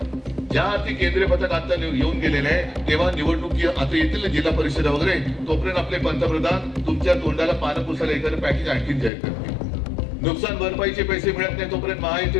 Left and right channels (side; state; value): right; drops out; at 9.1 s